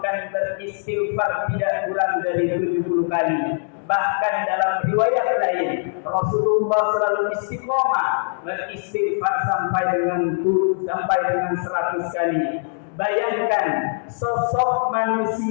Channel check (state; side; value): silent; right; digital silence